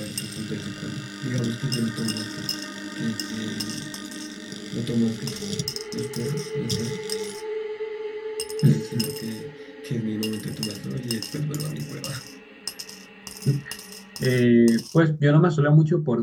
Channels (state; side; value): identical; both; correlation 1.00